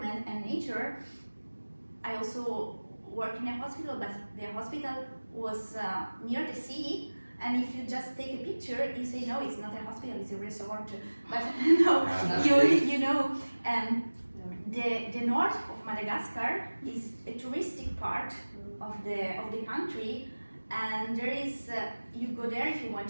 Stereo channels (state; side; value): inverted; both; correlation -1.00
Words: and nature. I also work in a hospital, but the hospital was near the sea, and if you just take a picture, you say, no, it's not a hospital, it's a resort. But no, the north of Madagascar is a touristic part of the country, and there is you go there if you want